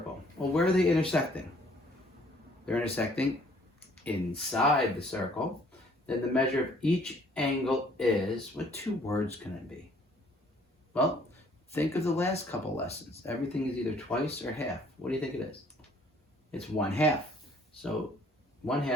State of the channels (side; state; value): both; normal; correlation 0.60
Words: well, where are they intersecting? They're intersecting inside the circle. Then the measure of each angle is, what 2 words can it be? Well, think of the last couple lessons. Everything is either twice or half. What do you think it is? It's 1/2. So